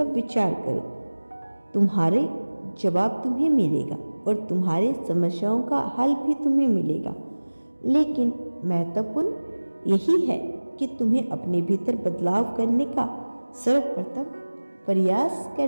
विचार करो, तुम्हारे जवाब तुम्हें मिलेगा और तुम्हारी समस्याओं का हल भी तुम्हें मिलेगा। लेकिन महत्वपूर्ण यही है कि तुम्हें अपने भीतर बदलाव करने का सर्वप्रथम प्रयास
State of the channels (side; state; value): both; inverted; correlation -1.00